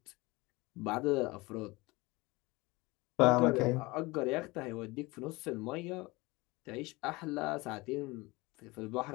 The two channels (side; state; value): right; quieter; 23.0 dB